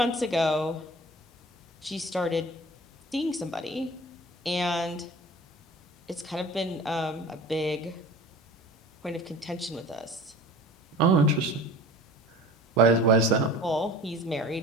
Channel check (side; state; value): both; normal; correlation 0.40